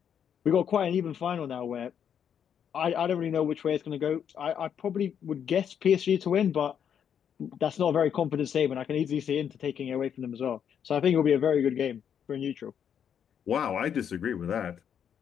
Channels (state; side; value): quieter; right; 8.4 dB